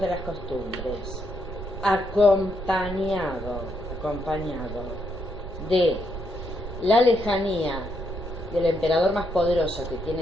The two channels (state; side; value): noise; right; rumble, 9 dB below the sound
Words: de las costumbres, acompañado de la lejanía del emperador más poderoso que